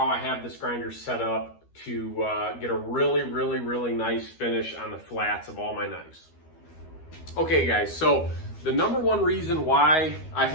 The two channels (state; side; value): late; right; 13 ms